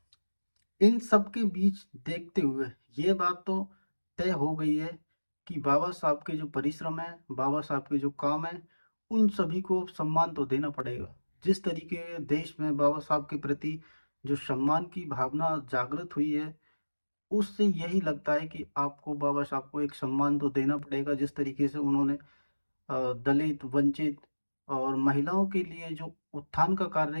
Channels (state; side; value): inverted; both; correlation -1.00